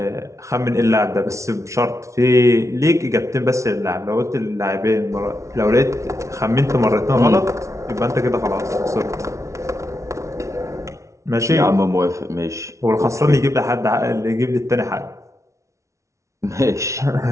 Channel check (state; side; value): late; left; 0.14 ms